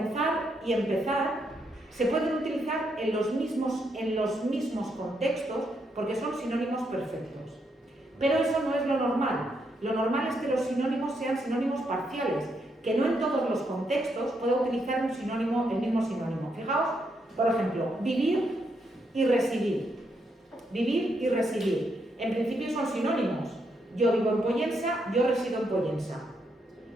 y empezar se pueden utilizar en los mismos contextos porque son sinónimos perfectos. Pero eso no es lo normal. Lo normal es que los sinónimos sean sinónimos parciales, que no en todos los contextos pueda utilizar el mismo sinónimo. Fijaos, por ejemplo, vivir y residir. Vivir y residir. En principio son sinónimos. Yo vivo en Pollensa, yo resido en Pollensa.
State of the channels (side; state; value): both; normal; correlation 0.78